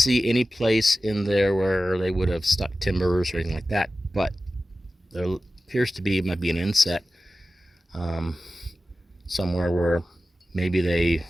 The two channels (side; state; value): both; normal; correlation 0.94